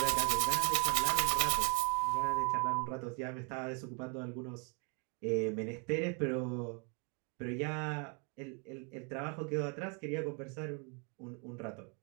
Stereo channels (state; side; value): quieter; left; 35.6 dB